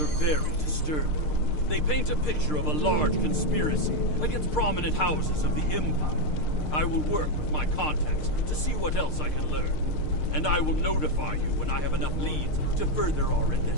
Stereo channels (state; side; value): late; right; 6.6 ms